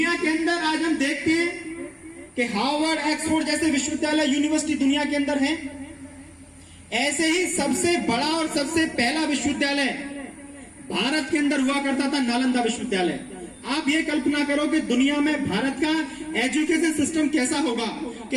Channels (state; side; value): identical; both; correlation 1.00